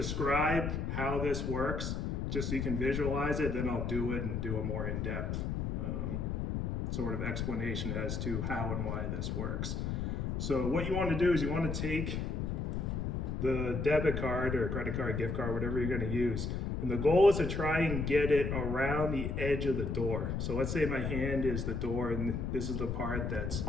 how this works, just so you can visualize it, then I'll do it and do a more in-depth sort of explanation as to how and why this works. So what you want to do is you want to take the debit card or credit card, gift card, whatever you're going to use, and the goal is to try and get it around the edge of the door. So let's say my hand is the door and this is the part that's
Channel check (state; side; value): noise; left; rumble, 1 dB below the sound